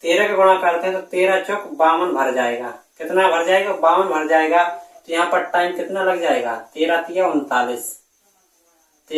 13 का गुणा करते हैं तो 13 चौक 52 भर जाएगा। कितना भर जाएगा? 52 भर जाएगा। तो यहाँ पर टाइम कितना लग जाएगा? 13 तिया 39,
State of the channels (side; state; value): both; identical; correlation 1.00